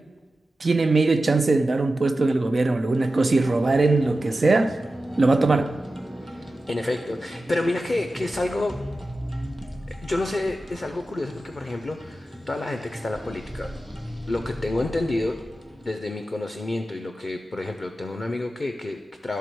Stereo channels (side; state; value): both; normal; correlation 0.93